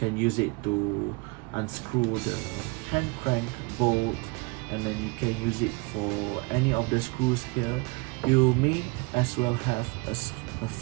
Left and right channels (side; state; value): left; quieter; 27.2 dB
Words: use it to unscrew the hand crank bolt, and then you can use it for any of the screws here. You may as well have a